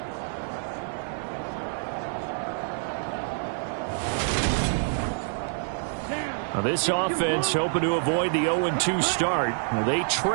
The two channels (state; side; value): silent; left; digital silence